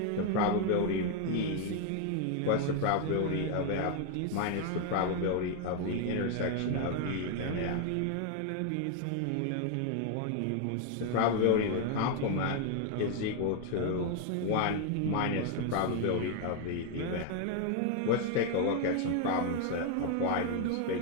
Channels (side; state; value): both; different; correlation 0.01